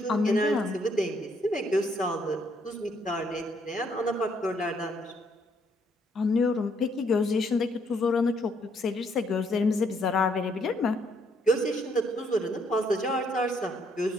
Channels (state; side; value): normal; both; correlation 0.70